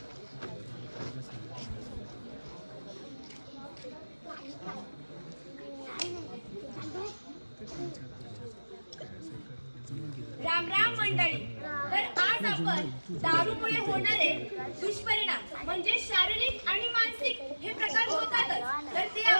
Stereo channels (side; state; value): both; inverted; correlation -1.00